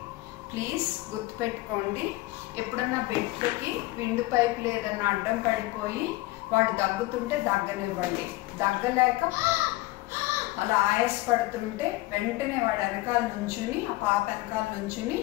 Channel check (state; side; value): quieter; right; 19.7 dB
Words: ప్లీజ్ గుర్తుపెట్టుకోండి. ఎప్పుడన్నా బిడ్డకి విండు పైపులు ఏదన్నా అడ్డం పడిపోయి వాడు దగ్గుతుంటే దగ్గనివ్వండి. దగ్గలేక అలా ఆయాసపడుతుంటే వెంటనే వాడు వెనకాల నుంచుని, ఆ పాప వెనకాల నుంచుని